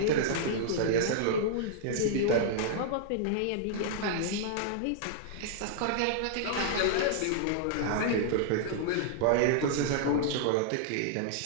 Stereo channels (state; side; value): different; both; correlation -0.01